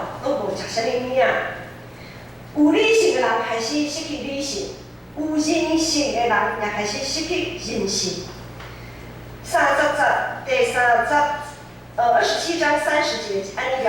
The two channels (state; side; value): identical; both; correlation 1.00